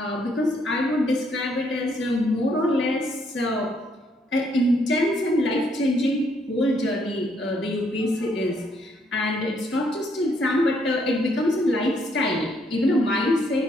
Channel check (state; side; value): normal; both; correlation 0.71